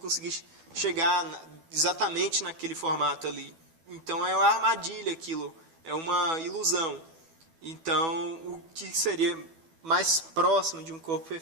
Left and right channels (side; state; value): left; late; 12 ms